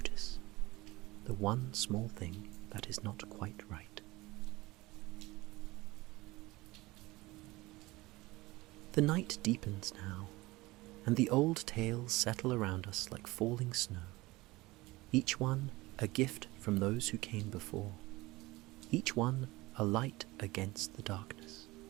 the one small thing that is not quite right. The night deepens now, and the old tales settle around us like falling snow, each one a gift from those who came before, each one a light against the darkness.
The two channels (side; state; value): left; quieter; 20.5 dB